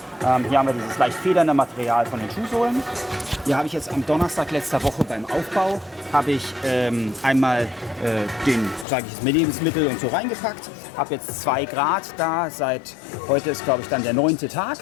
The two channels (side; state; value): right; drops out; at 8.8 s